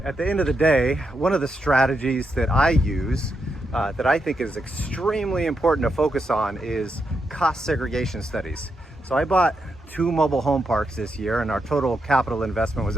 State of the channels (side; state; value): both; normal; correlation 0.83